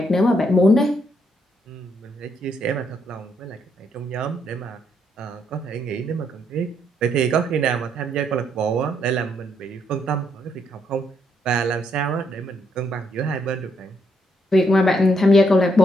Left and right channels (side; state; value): both; normal; correlation 0.75